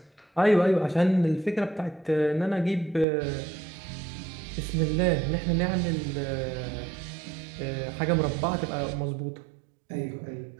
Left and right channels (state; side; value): drops out; left; at 3.1 s